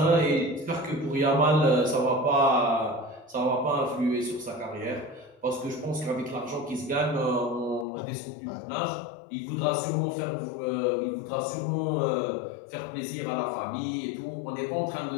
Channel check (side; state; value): right; drops out; at 7.9 s